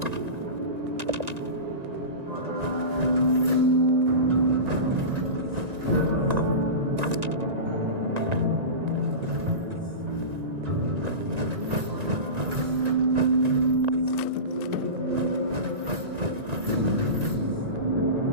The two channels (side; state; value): left; late; 1.9 ms